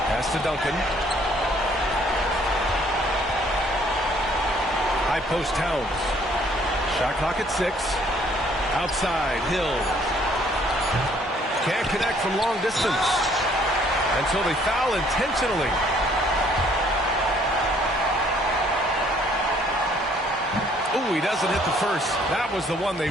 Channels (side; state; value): both; normal; correlation 0.62